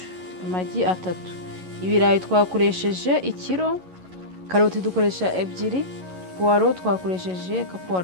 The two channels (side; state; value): left; late; 11 ms